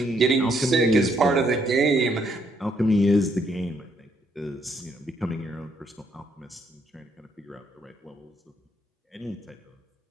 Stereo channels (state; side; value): normal; both; correlation 0.72